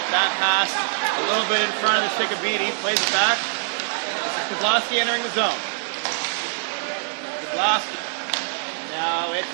That pass a little bit in front of the stick of Beatty, plays it back. This is Kozlowski entering the zone. Kozlowski. Now it's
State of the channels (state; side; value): silent; left; 63 dB below the other